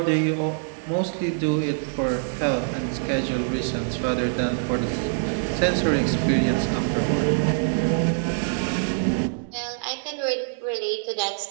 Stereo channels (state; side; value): silent; left; digital silence